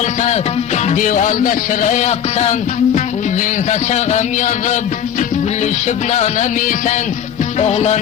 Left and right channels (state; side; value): quieter; right; 9.1 dB